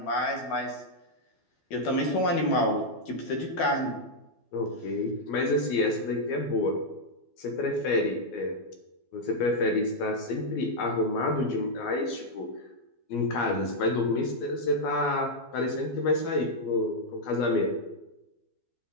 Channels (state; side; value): late; right; 12 ms